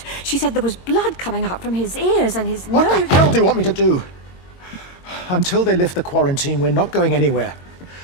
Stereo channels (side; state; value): right; late; 22 ms